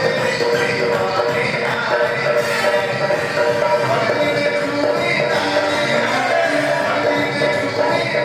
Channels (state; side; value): identical; both; correlation 1.00